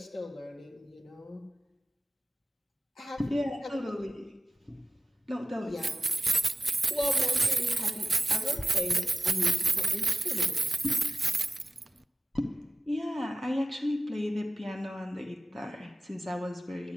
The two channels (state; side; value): normal; both; correlation 0.96